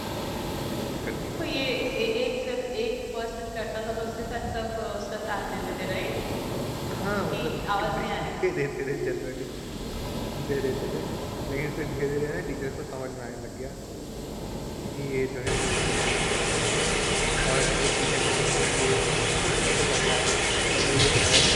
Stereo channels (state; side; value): identical; both; correlation 1.00